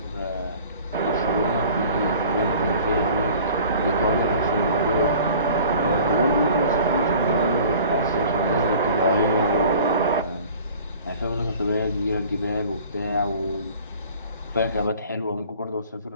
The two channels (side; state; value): both; inverted; correlation -0.46